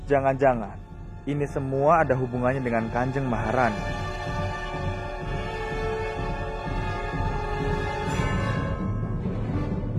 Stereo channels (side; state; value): both; identical; correlation 1.00